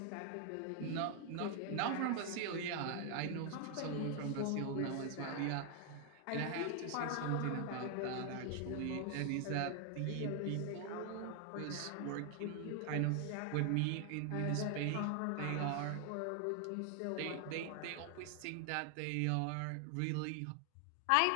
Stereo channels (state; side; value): different; both; correlation 0.00